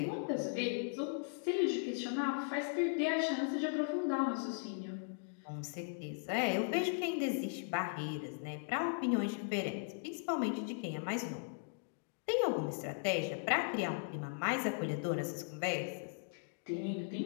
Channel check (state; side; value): silent; right; digital silence